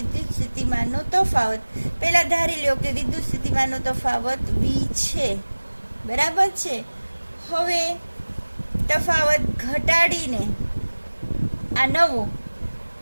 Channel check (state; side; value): inverted; both; correlation -1.00